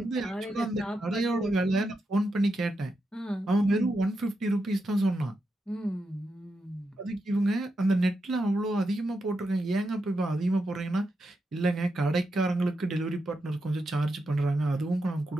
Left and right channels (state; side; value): normal; both; correlation 0.86